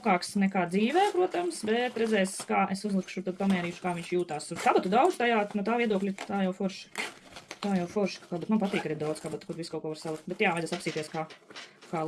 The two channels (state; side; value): identical; both; correlation 1.00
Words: nekā dzīvē, protams, bet redzēs, kā es uzlikšu, tad pamērīšu, kā viņš jūtās. Kabatu daudz tajā, no tā viedokļa, tā jau forši, kabatu. Man patīk arī daudz kabatu, kur visu kaut ko var salikt. Bet, jā, vajadzēs apsīties, kā